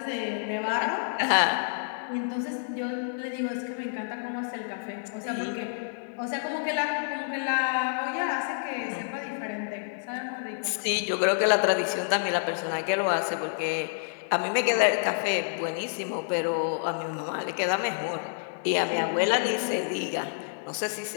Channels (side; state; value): right; silent; digital silence